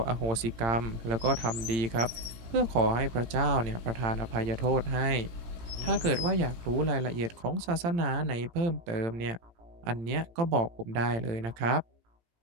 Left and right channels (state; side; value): late; left; 18 ms